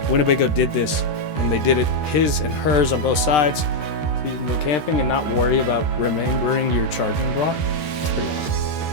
Winnebago did this, and they did it his and hers on both sides, so you can go camping and not worry about remembering your charging block. It's pretty awesome.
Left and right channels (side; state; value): right; late; 13 ms